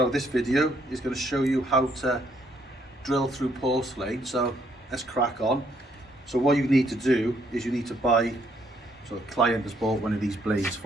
this video is going to show you how to drill through porcelain. So let's crack on. So what you need to do is you need to buy, so a client has bought one of these blades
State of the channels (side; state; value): both; normal; correlation 0.70